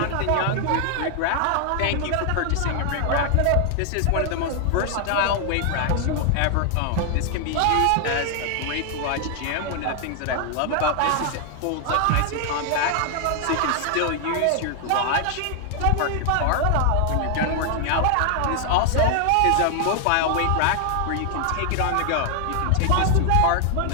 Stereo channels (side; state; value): both; different; correlation 0.00